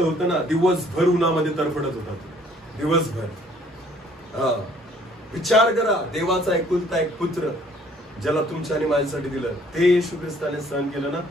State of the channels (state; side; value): normal; both; correlation 0.59